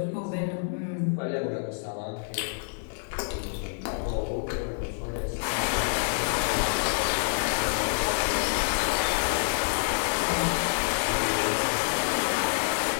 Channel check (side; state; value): right; silent; digital silence